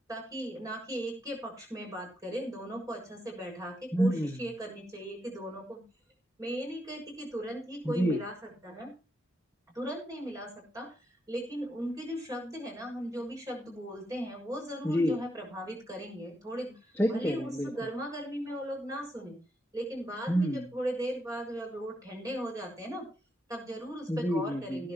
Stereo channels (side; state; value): both; normal; correlation 0.81